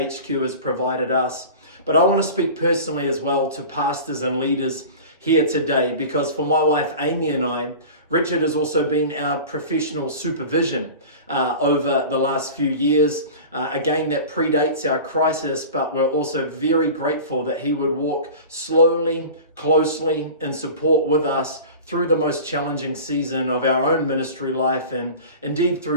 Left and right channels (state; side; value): inverted; both; correlation -0.36